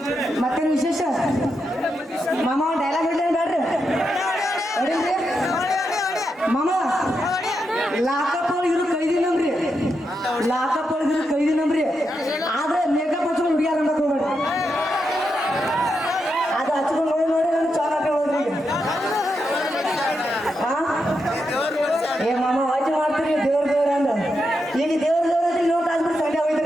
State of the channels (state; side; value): normal; both; correlation 0.85